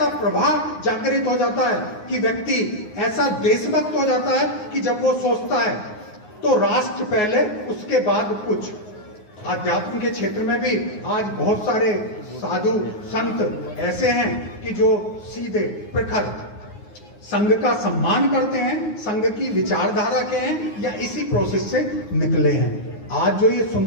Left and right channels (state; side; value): late; right; 9.5 ms